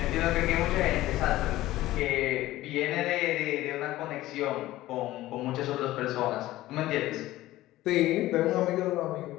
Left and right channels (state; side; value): quieter; right; 16.1 dB